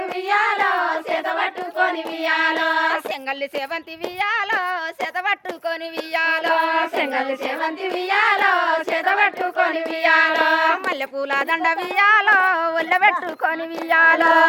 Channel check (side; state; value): both; identical; correlation 1.00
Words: వియ్యాలో చేత పట్టుకొని వియ్యాలో సెంగల్లి సేవంతి వియ్యాలో చేత పట్టుకొని వియ్యాలో సెంగల్లి సేవంతి వియ్యాలో చేత పట్టుకొని వియ్యాలో మల్లెపూల దండ వియ్యాలో ఒళ్ళబెట్టుకొని వియ్యాలో